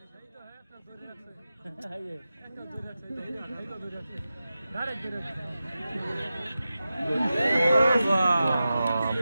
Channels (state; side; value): inverted; both; correlation -0.93